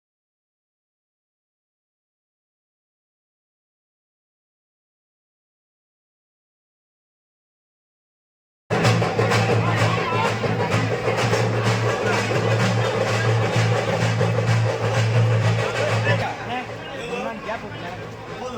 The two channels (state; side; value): identical; both; correlation 1.00